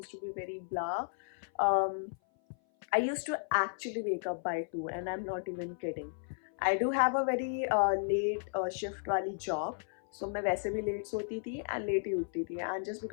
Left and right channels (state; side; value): silent; right; 55 dB below the other